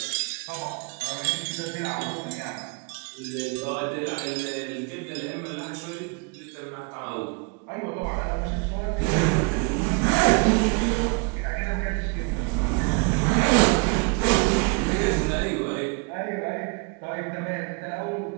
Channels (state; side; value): quieter; left; 33.2 dB